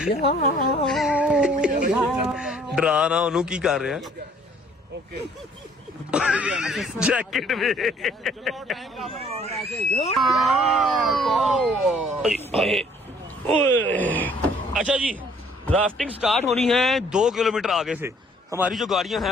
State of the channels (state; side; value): normal; both; correlation 0.59